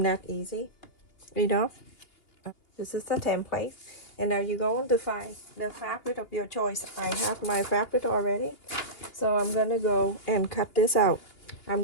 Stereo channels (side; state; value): right; late; 2.8 ms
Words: that easy? Enough. This is the template, and now you're going to find the fabric of your choice. I have my fabric already, so I'm gonna go and cut this out. I'm